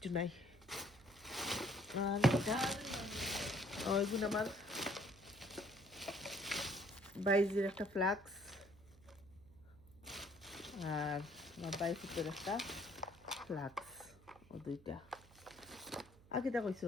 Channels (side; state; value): right; noise; hum, 24 dB below the sound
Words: নাই। আর এটা এগুলো আমার বাইজের একটা ফ্লাক্স আর আমার বাইফুটের একটা ফ্লাক্স ও দুইটা। আর কিটা কইছ